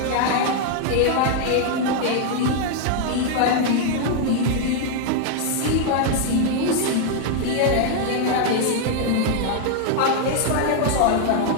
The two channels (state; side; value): different; both; correlation 0.00